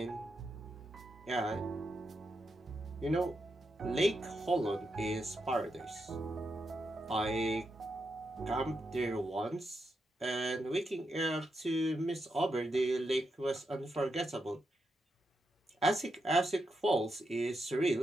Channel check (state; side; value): normal; both; correlation 0.85